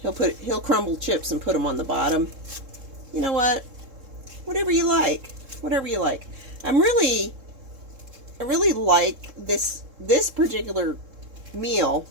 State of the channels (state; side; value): late; left; 3.7 ms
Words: crumble chips and put them on the bottom. You know what? Whatever you like. Whatever you like. I really like this particular meal